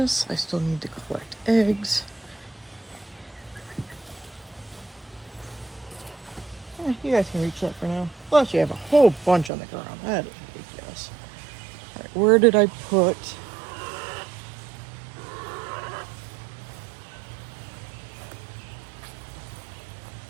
I still need to collect eggs. You guys can reach that for now. Plus, you have a whole bunch on the ground. That is ridiculous. All right, where did I put?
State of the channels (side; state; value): left; drops out; at 9.5 s